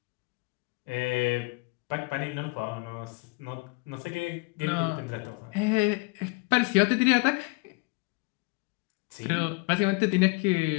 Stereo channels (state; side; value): quieter; right; 26.7 dB